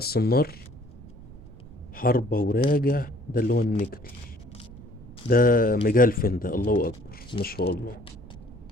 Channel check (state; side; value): noise; right; rumble, 20 dB below the sound